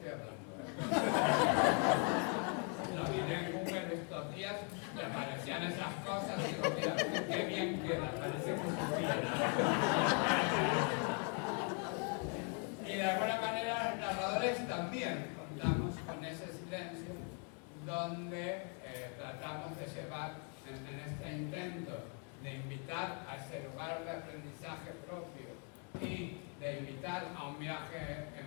hablando. Lo miré en Google estos días, me aparecían esas cosas y digo, mira, qué bien queda, parece que supiera. Y de alguna manera los narradores también contamos con ese silencio donde tratamos de llevar en este intento de invitar a ese lugar de aprendizaje propio y de invitar a un viaje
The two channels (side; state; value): right; quieter; 39.9 dB